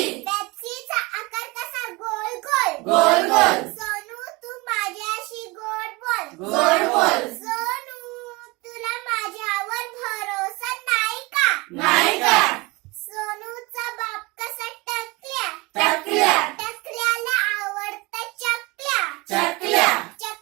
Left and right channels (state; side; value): quieter; left; 24.7 dB